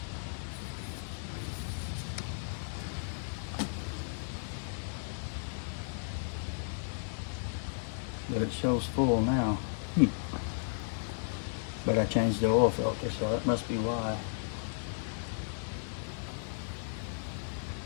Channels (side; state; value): right; silent; 55 dB below the other